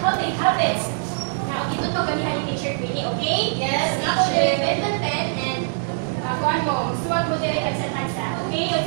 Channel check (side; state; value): left; silent; 63 dB below the other